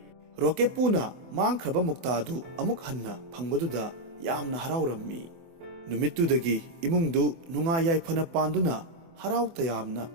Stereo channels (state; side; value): late; left; 24 ms